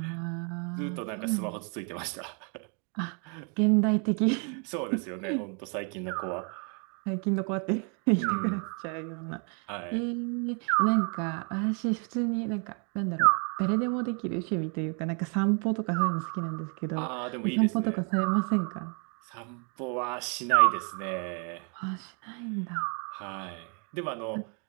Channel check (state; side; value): quieter; left; 37.8 dB